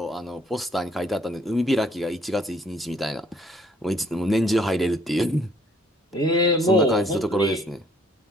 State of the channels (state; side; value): normal; both; correlation 0.62